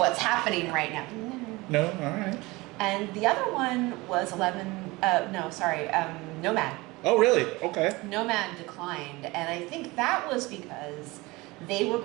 happening right now. No, all right. And the other one was Nomad. Oh, really? Okay. Nomad declined, and I think that was because they were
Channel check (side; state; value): left; quieter; 22.3 dB